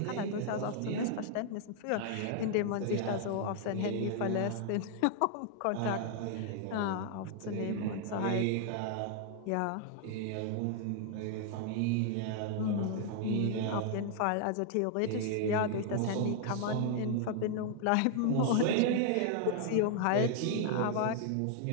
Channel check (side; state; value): both; different; correlation 0.00